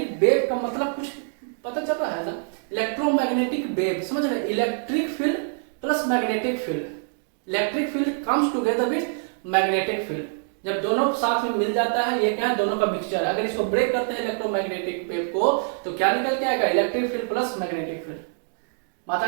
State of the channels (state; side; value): silent; left; digital silence